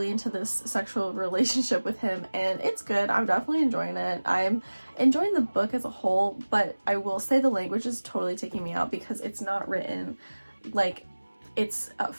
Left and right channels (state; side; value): inverted; both; correlation -1.00